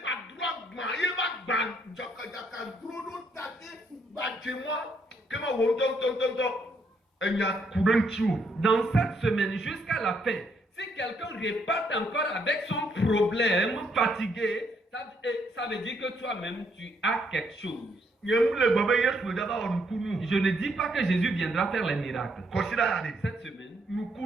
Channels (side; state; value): both; normal; correlation 0.72